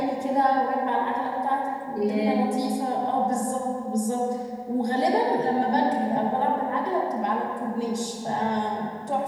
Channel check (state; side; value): identical; both; correlation 1.00